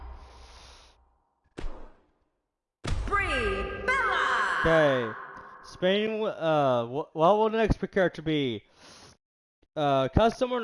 Brie Bella. Okay. Spinning. What will the next character be? Custom or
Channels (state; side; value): identical; both; correlation 1.00